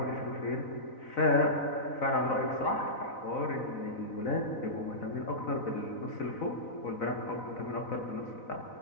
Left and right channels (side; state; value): right; late; 4.0 ms